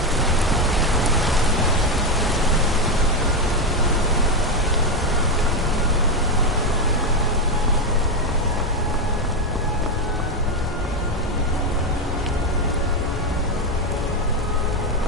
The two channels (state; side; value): normal; both; correlation 0.09